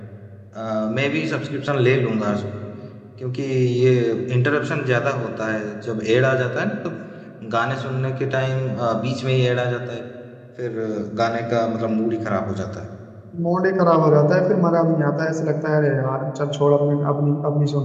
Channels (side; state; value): both; identical; correlation 1.00